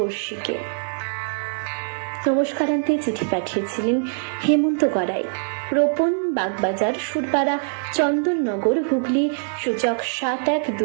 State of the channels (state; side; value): silent; left; digital silence